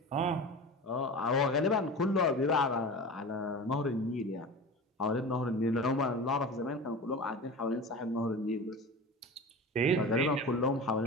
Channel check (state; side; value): normal; both; correlation 0.32